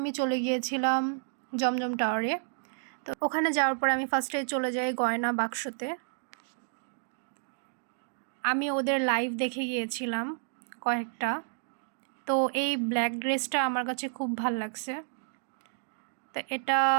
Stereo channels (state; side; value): silent; left; digital silence